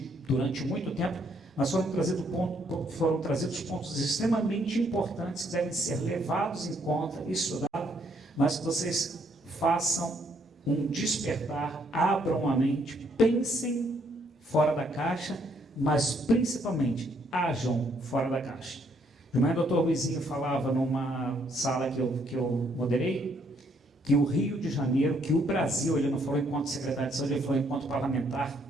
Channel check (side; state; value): both; normal; correlation 0.70